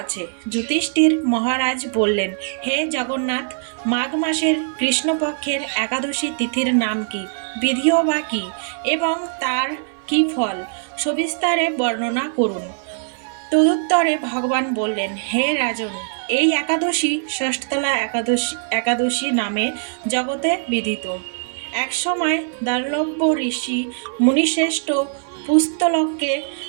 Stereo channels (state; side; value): silent; left; 55 dB below the other